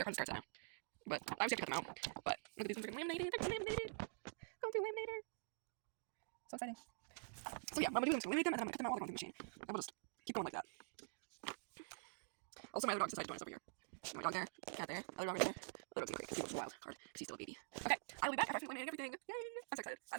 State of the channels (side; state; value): left; silent; digital silence